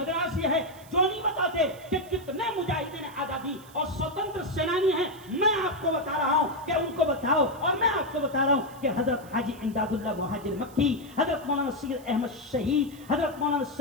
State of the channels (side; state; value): right; noise; hiss, 23 dB below the sound